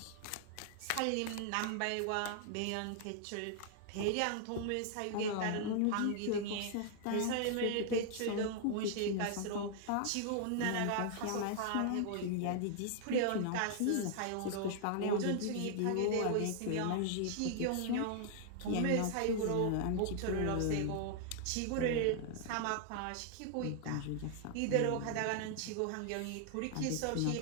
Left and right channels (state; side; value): different; both; correlation 0.00